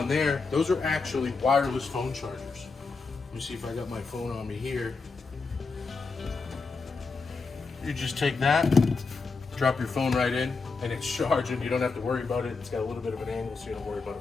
there, those are actually wireless phone chargers. Let me see if I got my phone on me here. You just take that, drop your phone right in, and it's charging. You don't have to worry about it. It's got a little bit of an angle, so you don't worry about it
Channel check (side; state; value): right; quieter; 4.3 dB